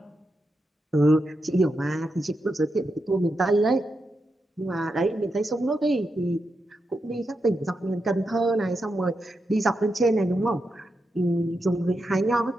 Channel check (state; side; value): normal; both; correlation 0.86